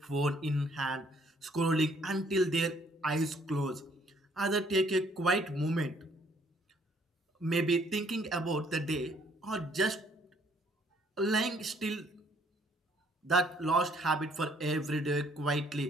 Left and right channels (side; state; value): both; normal; correlation 0.64